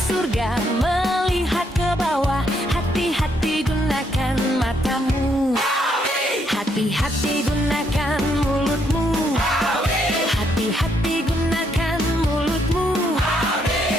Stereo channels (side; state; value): both; normal; correlation 0.74